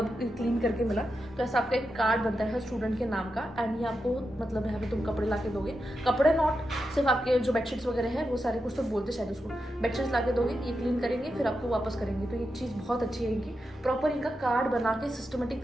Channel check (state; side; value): normal; both; correlation 0.88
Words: क्लीन करके मिला, तो ऐसा आपका एक कार्ड बनता है हर स्टूडेंट के नाम का। एंड ये आपको मतलब यहाँ पे तुम कपड़े ला के दोगे, कपड़े नॉट सिर्फ आपके जो बेडशीट्स वगैरह है वो सारे, कुछ तो बोलते शायद उसको, बेडशीट्स ला के दोगे, ये क्लीन करेंगे फिर आपको वापस करेंगे। तो ये चीज़ बहुत अच्छी है इनकी, प्रॉपर इनका कार्ड बना के सिस्टमेटिक